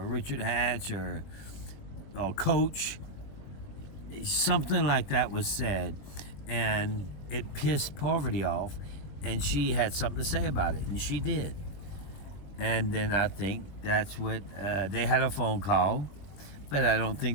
Richard Hatch or Coach. Something like that was said, and it pissed Parvati off, and she had something to say about it, and she did. And then I think that's what they had a phone call, but I don't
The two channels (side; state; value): right; late; 21 ms